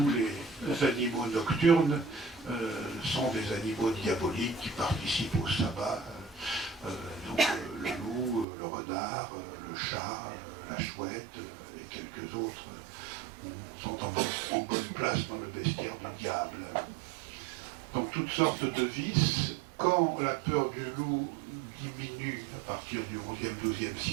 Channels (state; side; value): drops out; left; at 8.5 s